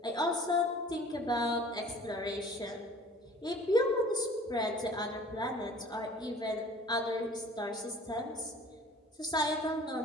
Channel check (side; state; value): both; normal; correlation 0.48